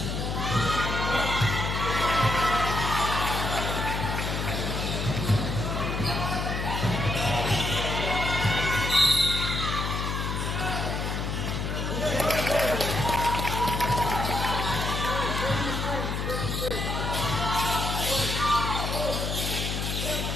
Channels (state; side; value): noise; left; hum, 2 dB below the sound